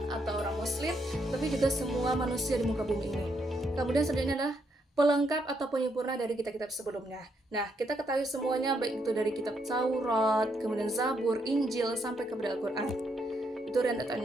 atau orang muslim, tapi juga semua manusia di muka bumi ini. Kemudian selanjutnya adalah pelengkap atau penyempurna dari kitab-kitab sebelumnya. Nah, kita ketahui semuanya, baik itu dari kitab Taurat, kemudian Zabur, Injil, sampai kepada Al-Quran. Itu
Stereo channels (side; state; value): both; normal; correlation 0.76